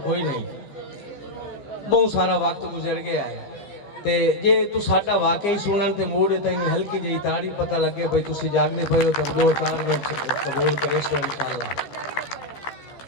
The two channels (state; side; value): late; right; 15 ms